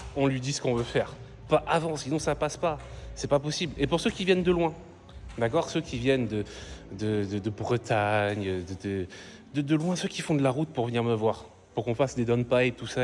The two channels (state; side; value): identical; both; correlation 1.00